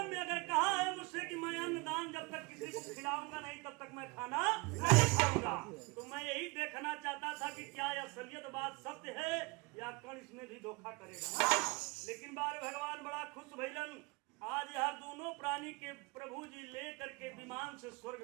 में अगर कहा है मुझसे कि मैं अन्न दान जब तक किसी को खिलाऊंगा नहीं तब तक मैं खाना नहीं खाऊंगा। तो मैं यही देखना चाहता था कि क्या यह असलियत बात सत्य है या कर्ण इसमें भी धोखा करेगा। लेकिन बार भगवान बड़ा खुश भइलन आज यह दोनों प्राणी के प्रभु जी लेकर के विमान से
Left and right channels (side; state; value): left; quieter; 26.1 dB